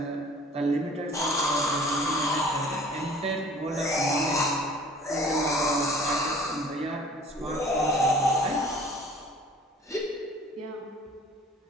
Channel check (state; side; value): normal; both; correlation 0.50